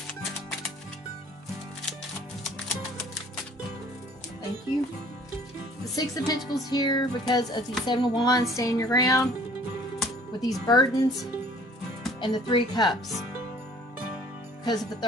Thank you. The 6 of Pentacles here because of the 7 of Wands, standing your ground with these burdens, and the 3 of Cups because of the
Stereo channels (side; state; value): both; normal; correlation 0.53